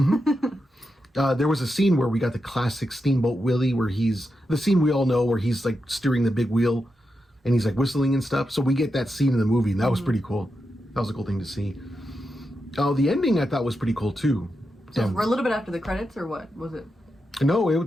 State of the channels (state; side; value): normal; both; correlation 0.87